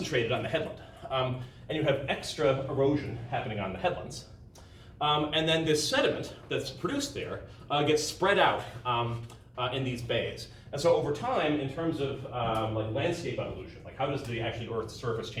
on the headland, and you have extra erosion happening on the headlands. And then this sediment that's produced there gets spread out in these bays. And so over time, in terms of like landscape evolution, like how does the actually Earth's surface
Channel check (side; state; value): both; identical; correlation 1.00